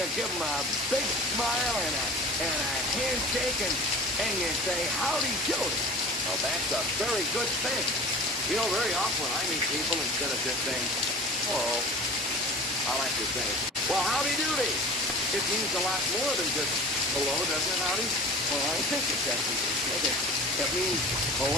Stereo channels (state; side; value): normal; both; correlation 0.39